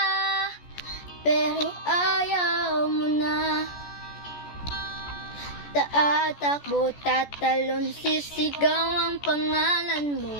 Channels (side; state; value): right; late; 14 ms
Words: pero ayaw mo na. Tatakbo, tatalon, sisigaw ang pangalan mo.